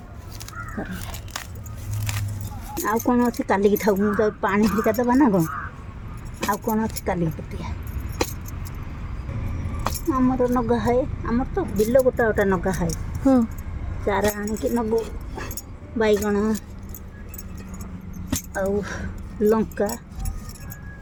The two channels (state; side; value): identical; both; correlation 1.00